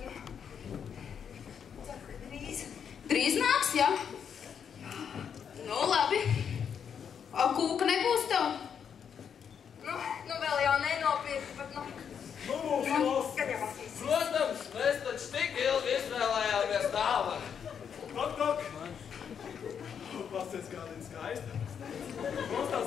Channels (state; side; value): quieter; right; 7.6 dB